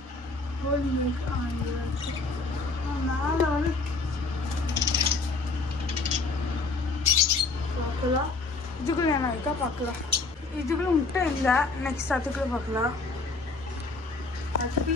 ஹோலி மேலே வந்து பார்க்கலாம் இதுக்குள்ள என்ன இருக்கா பார்க்கலாம் இதுக்குள்ள முட்டை இல்லை நெக்ஸ்ட் அதுக்குள்ள பார்க்கலாம்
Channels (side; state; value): right; quieter; 3.7 dB